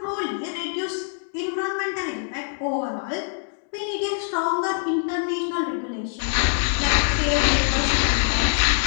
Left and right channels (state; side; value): silent; right; digital silence